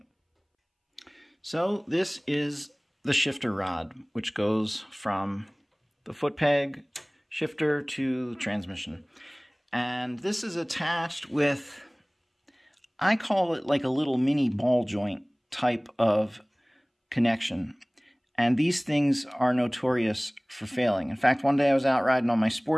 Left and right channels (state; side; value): identical; both; correlation 1.00